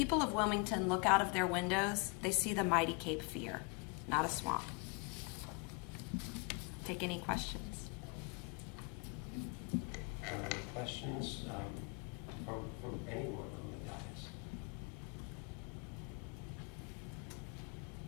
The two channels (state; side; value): quieter; right; 31.5 dB